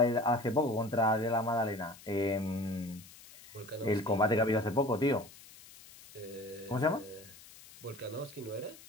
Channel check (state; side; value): noise; left; hiss, 20 dB below the sound